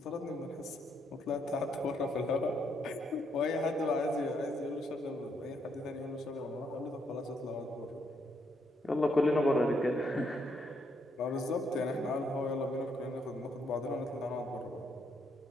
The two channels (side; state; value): both; normal; correlation 0.74